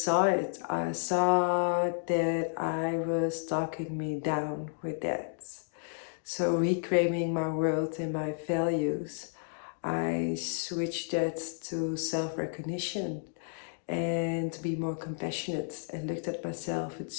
it. I saw that I was talking me down with that. So reclaiming my world and my values, I switched that to self-recognition and to be more compassionate, and looked at myself with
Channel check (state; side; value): silent; right; digital silence